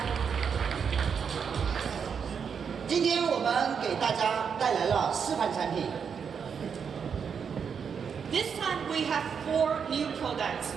今天我们给大家带来了4款产品。This time we have 4 new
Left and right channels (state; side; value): quieter; left; 6.7 dB